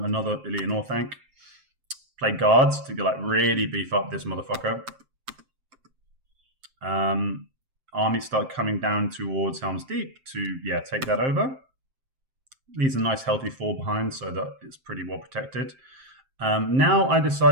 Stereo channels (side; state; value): left; late; 7.6 ms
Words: Illian Orthanc. Play guards to really beef up this motherfucker. Armies start coming down towards Helm's Deep to take that over. Leaves a nice healthy 4 behind, so that it's pretty well protected. Now I